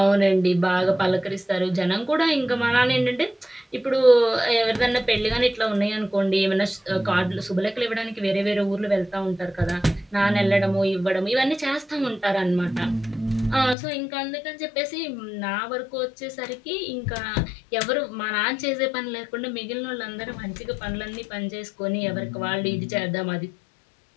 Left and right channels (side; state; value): right; drops out; at 13.8 s